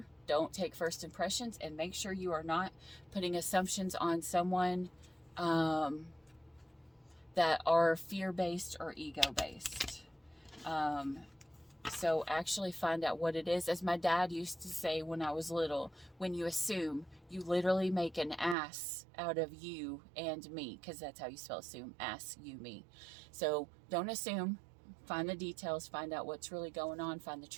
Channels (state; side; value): drops out; left; at 18.6 s